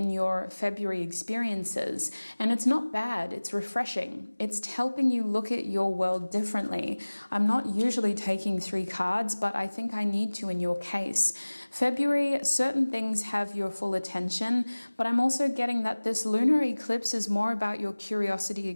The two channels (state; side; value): inverted; both; correlation -1.00